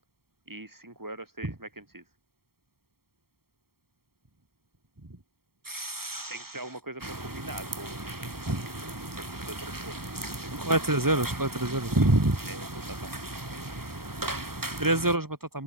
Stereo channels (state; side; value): late; left; 0.94 ms